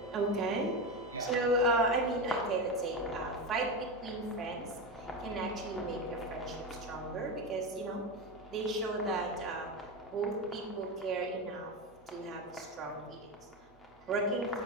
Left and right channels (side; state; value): both; normal; correlation 0.17